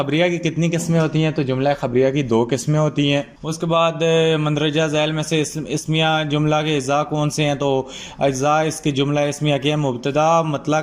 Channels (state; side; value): identical; both; correlation 1.00